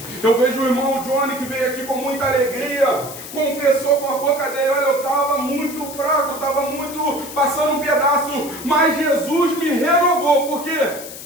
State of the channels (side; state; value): left; noise; hiss, 12 dB below the sound